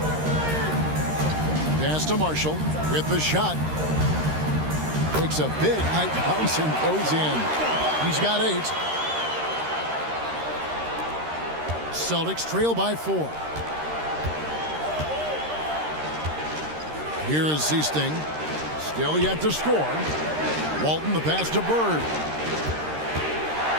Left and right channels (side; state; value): left; late; 13 ms